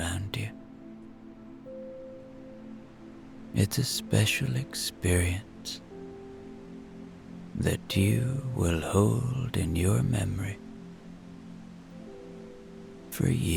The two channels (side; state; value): both; identical; correlation 1.00